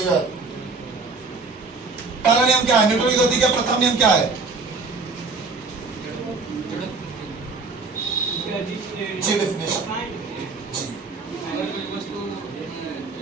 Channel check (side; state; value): left; quieter; 4.1 dB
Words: पहला नियम क्या है? न्यूटन की गति का प्रथम नियम क्या है? जी डेफिनेशन। जी